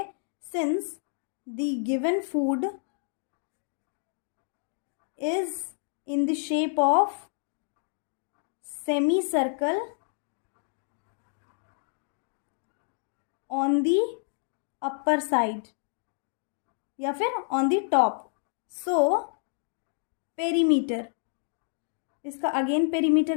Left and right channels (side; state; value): right; silent; 58 dB below the other